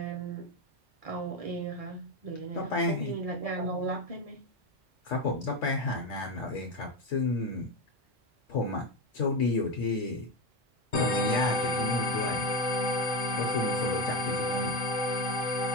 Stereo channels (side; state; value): both; normal; correlation 0.15